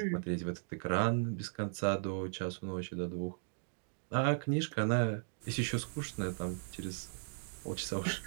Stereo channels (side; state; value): left; silent; digital silence